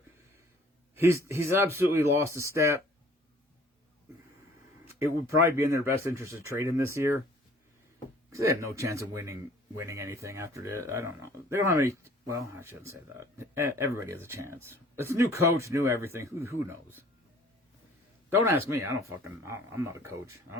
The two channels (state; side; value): normal; both; correlation 0.53